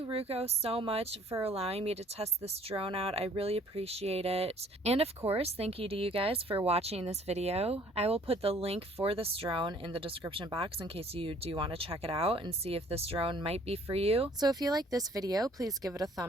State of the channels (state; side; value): normal; both; correlation 0.58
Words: Ruko, so much for allowing me to test this drone out. I really appreciate it. And of course, thank you to you guys for watching this video. I will put the link for this drone in the description box in case you do want to check it out and see if this drone might be for you. So if you like this video, please give it a